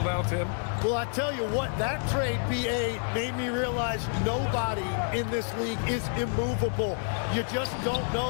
now, Tim? Well, I tell you what, that trade, BA, made me realize nobody in this league is immovable. You just don't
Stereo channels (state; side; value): silent; right; 59 dB below the other